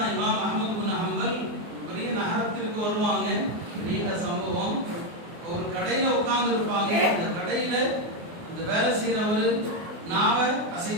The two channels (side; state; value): left; late; 24 ms